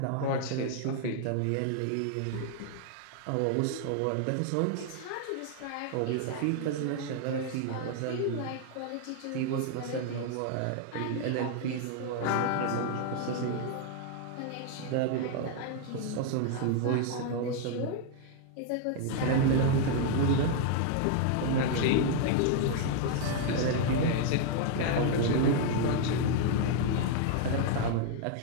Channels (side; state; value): both; different; correlation 0.00